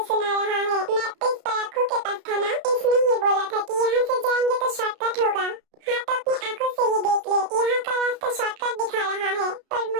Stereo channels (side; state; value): left; late; 33 ms